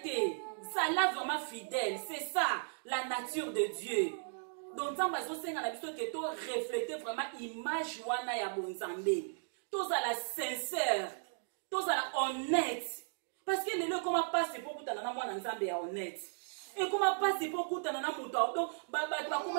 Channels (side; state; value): left; silent; digital silence